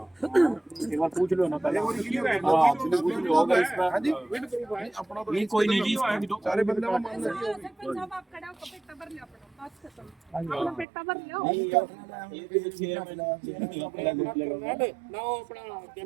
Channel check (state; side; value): drops out; left; at 10.9 s